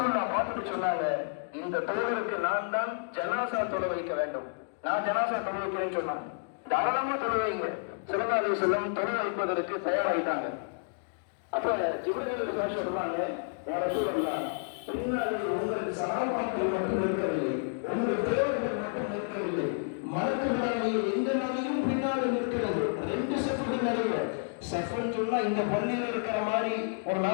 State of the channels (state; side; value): silent; right; digital silence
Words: பார்த்துட்டு சொன்னாங்க, இந்த தோழருக்கு நான் தான் ஜனாசா தொலை வைக்க வேண்டும், நான் ஜனாசா தொலை வைக்கிறேன்னு சொன்னாங்க. தாராளமா தொலை வைங்க. ஸல்லல்லாஹு அலைஹி வஸல்லம் தொலை வைப்பதற்கு தயாராயிட்டாங்க. அப்ப ஜிப்ரீல் சொல்றாங்க, யா ரசூலல்லாஹ், பின்னாலே உங்கள் சஹாபாக்கள் மட்டும் இருக்கவில்லை, உங்கள் தேவர்கள் மட்டும் இருக்கவில்லை, மலக்குகளாகிய இந்த நபியும் பின்னால இருக்கிறது. 2 சஃபுகள் நிறைய. சஃபுன்னு சொன்னா இந்த பள்ளியில் இருக்கிற மாதிரி ஒரு